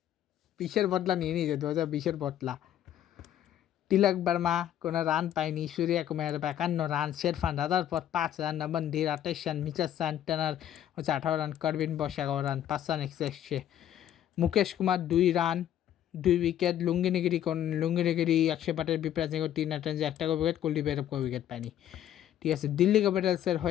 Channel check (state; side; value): quieter; right; 11.1 dB